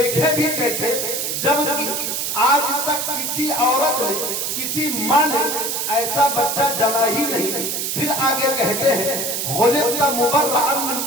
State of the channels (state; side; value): noise; right; hiss, 1 dB below the sound